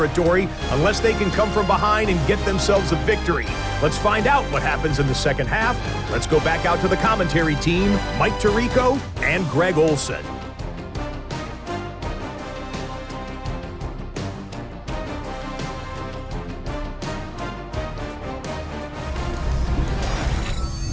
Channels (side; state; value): both; identical; correlation 1.00